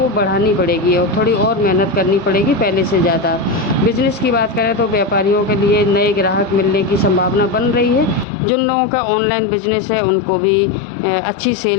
बढ़ानी पड़ेगी और थोड़ी और मेहनत करनी पड़ेगी पहले से ज़्यादा। बिजनेस की बात करें तो व्यापारियों के लिए नए ग्राहक मिलने की संभावना बन रही है। जिन लोगों का ऑनलाइन बिजनेस है उनको भी अच्छी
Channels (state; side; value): drops out; right; at 8.2 s